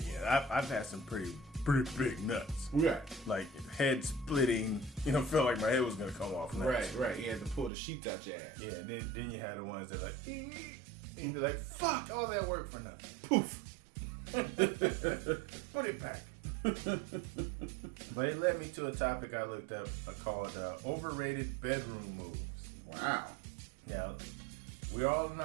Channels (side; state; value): left; drops out; at 7.7 s